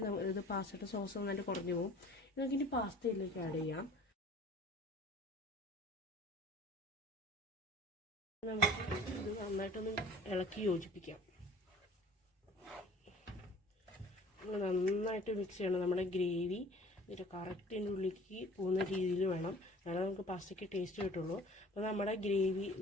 ഇത് പാസ്തയുടെ സോസ് നന്നായിട്ട് കുറഞ്ഞു പോകും. നമുക്ക് ഇനി പാസ്തയിലേക്ക് ആഡ് ചെയ്യാം. നമുക്ക് ഇത് നന്നായിട്ടൊന്ന് ഇളക്കി യോജിപ്പിക്കാം. നന്നായിട്ട് മിക്സ് ചെയ്യണം. നമ്മുടെ ഗ്രേവി ഇതിൻ്റെ കറക്റ്റിൻ്റെ ഉള്ളിലേക്ക് പോകുന്ന രീതിയിൽ വേണം, എന്നാലും നമുക്ക് പാസ്തയ്ക്ക് ടേസ്റ്റ് കിട്ടുള്ളൂ. അപ്പോൾ നമ്മുടെ ഗ്രേവി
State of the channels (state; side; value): normal; both; correlation 0.47